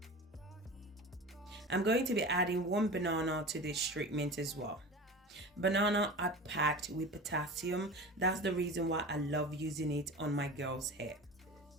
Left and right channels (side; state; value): both; normal; correlation 0.33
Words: I'm going to be adding 1 banana to this treatment as well. Banana are packed with potassium. That's the reason why I love using it on my girl's hair.